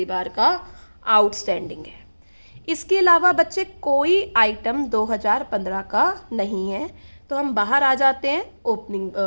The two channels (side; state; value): both; inverted; correlation -1.00